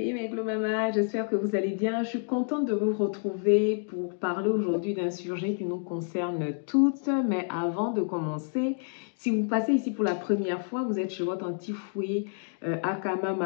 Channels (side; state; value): right; silent; 59 dB below the other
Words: mes Glow Mama, j'espère que vous allez bien. Je suis contente de vous retrouver pour parler aujourd'hui d'un sujet qui nous concerne toutes. Mais avant de commencer, si vous passez ici pour la première fois, vous êtes chez votre anti-fouet, aka